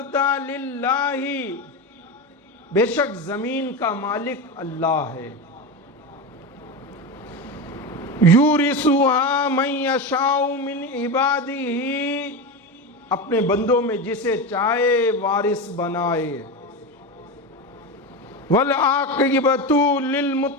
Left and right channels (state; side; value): normal; both; correlation 0.19